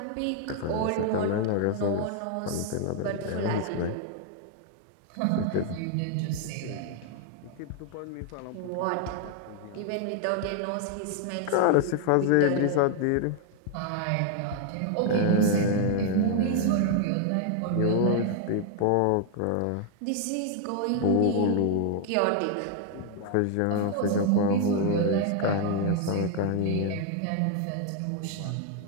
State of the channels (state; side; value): different; both; correlation 0.00